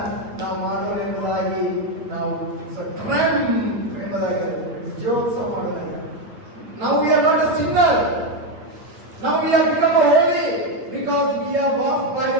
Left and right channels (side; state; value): left; late; 8.7 ms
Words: ನಾವು ಮಾಡೋಣ ಎಂಬುದಾಗಿ ನಾವು ಎಂಬುದಾಗಿ ವಿಜಯೋತ್ಸವ ಮಾಡೋದಾಗಿ. ನಾವು we are not a Sinner. Now we have become holy because we are washed by